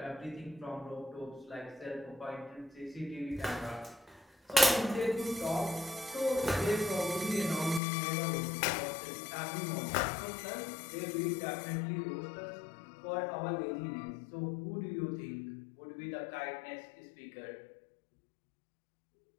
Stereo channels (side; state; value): right; drops out; at 7.8 s